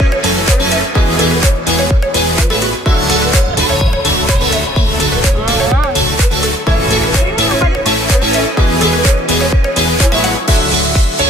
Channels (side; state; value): both; normal; correlation 0.63